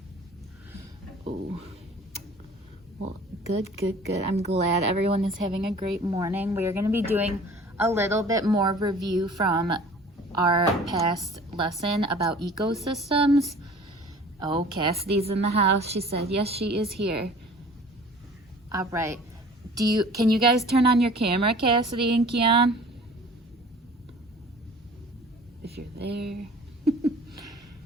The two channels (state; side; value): normal; both; correlation 0.47